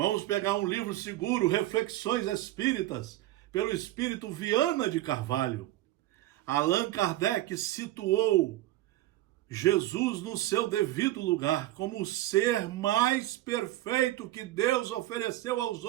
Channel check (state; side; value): quieter; left; 15.8 dB